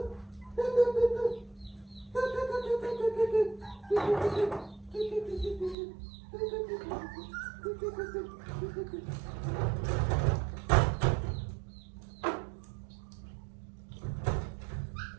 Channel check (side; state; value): left; drops out; at 5.8 s